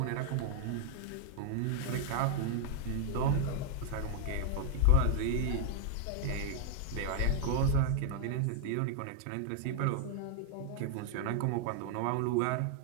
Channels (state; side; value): different; both; correlation 0.00